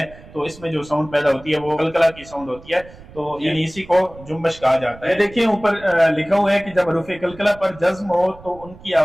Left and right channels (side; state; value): right; noise; rumble, 20 dB below the sound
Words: तो इसमें जो साउंड पैदा होती है वो कलकला की साउंड होती है। तो यानी इसी को जुम्बश कहा जाता है। देखिए ऊपर लिखा हुआ है कि जब हरूफ कलकला पर जज्म हो तो उनकी